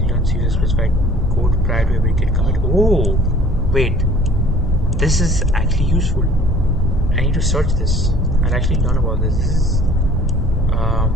runs user specified code prior to every git commit. Oh, wait, this is actually useful. I need to search this. I'll actually learn about this. This is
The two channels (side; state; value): both; normal; correlation 0.51